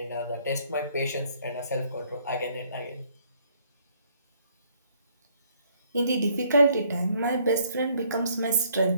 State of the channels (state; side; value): inverted; both; correlation -0.65